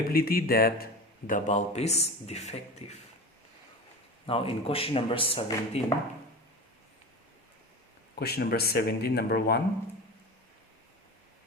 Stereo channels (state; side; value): normal; both; correlation 0.30